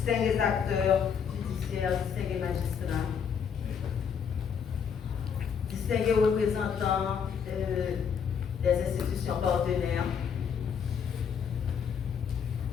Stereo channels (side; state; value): right; quieter; 7.1 dB